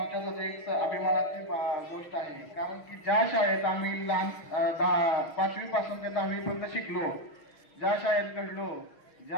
एक अभिमानाची गोष्ट आहे. कारण की ज्या शाळेत आम्ही लहान 5वी पासून ते 10वी पर्यंत शिकलो, ज्या शाळेत घडलो,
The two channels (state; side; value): late; right; 6.1 ms